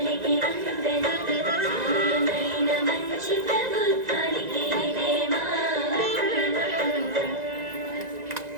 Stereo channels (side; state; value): left; late; 1.9 ms